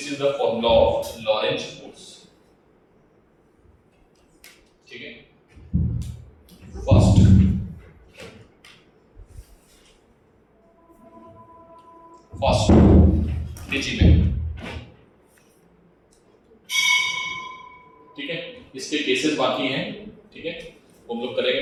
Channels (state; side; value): identical; both; correlation 1.00